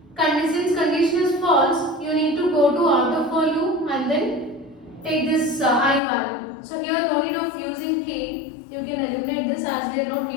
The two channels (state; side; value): drops out; right; at 6.0 s